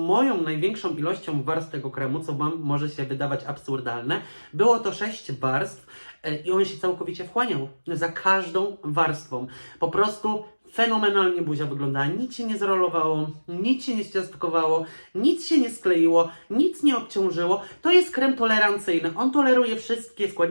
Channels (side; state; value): both; inverted; correlation -1.00